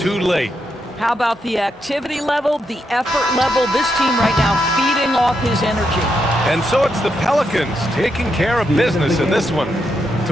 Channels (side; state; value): both; normal; correlation 0.82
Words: late. How about the activity level, the effort level? This team right now feeding off his energy. And so it's the Pelicans taking care of business in this one.